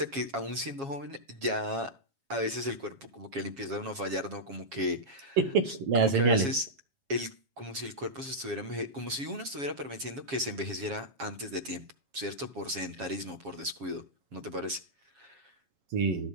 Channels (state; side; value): late; left; 7.3 ms